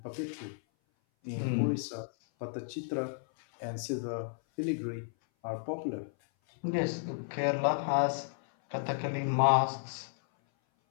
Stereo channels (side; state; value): right; silent; 56 dB below the other